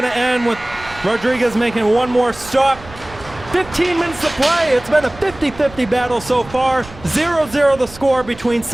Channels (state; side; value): noise; right; rumble, 19 dB below the sound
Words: to end, with Rodriguez making one more stop. 15 minutes to play. It's been a 50-50 battle so far. 0-0 the score between